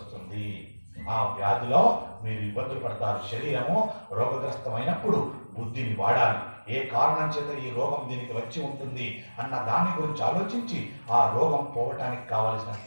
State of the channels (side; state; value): both; inverted; correlation -1.00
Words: ఆ వ్యాధిలో మీరు ఇబ్బందులు పడతారు. శరీరము రోగగ్రస్తమైనప్పుడు బుద్ధిని వాడాలి. ఏ కారణం చేత ఈ రోగం దీనికి వచ్చి ఉంటుంది అన్న దాని గురించి ఆలోచించి ఆ రోగం పోవటానికి కావలసిన